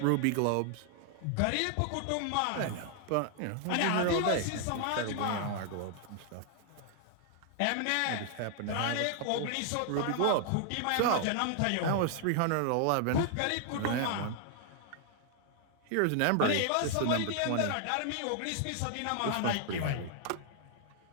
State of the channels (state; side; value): different; both; correlation 0.00